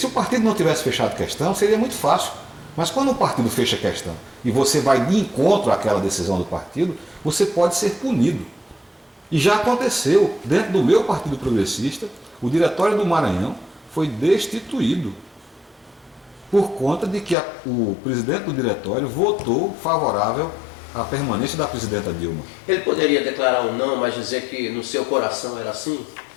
o partido não tivesse fechado questão, seria muito fácil. Mas quando o partido fecha questão e você vai de encontro àquela decisão do partido, você pode ser punido. E já aconteceu, dentro do meu Partido Progressista, o Diretório do Maranhão foi destituído por conta de que o presidente do diretório votou favorável à permanência da presidenta Dilma. Ele poderia declarar o não, mas dizer que no seu coração era sim?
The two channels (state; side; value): drops out; right; at 17.4 s